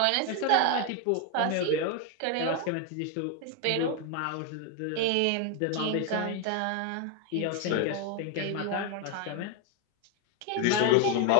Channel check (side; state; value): both; different; correlation 0.01